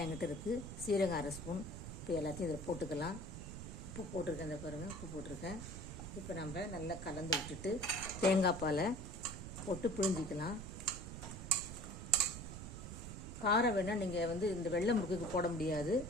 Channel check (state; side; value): noise; right; rumble, 9 dB below the sound